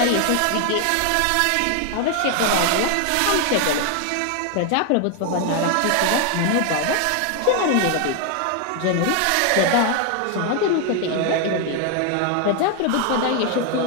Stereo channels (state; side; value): different; both; correlation 0.01